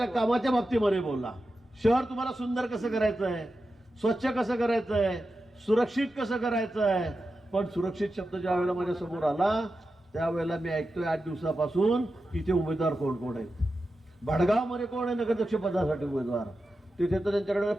कामाच्या बाबतीमध्ये बोलला. शहर तुम्हाला सुंदर कसं करायचं आहे, स्वच्छ कसं करायचं आहे, सुरक्षित कसं करायचं आहे. पण सुरक्षित शब्द ज्या वेळेला माझ्या समोर आला त्यावेळेला मी ऐकतोय 8 दिवसापासून इथे उमेदवार कोण कोण आहेत. भडगावमध्ये कोण आहे नगराध्यक्ष पदासाठी उमेदवार, तिथे तर त्यांच्याकडे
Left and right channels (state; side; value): normal; both; correlation 0.91